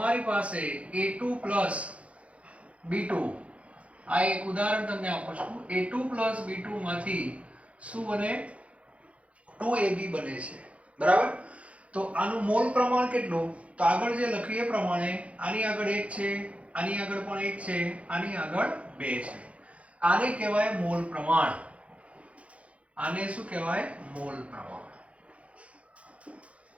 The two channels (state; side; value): late; left; 0.063 ms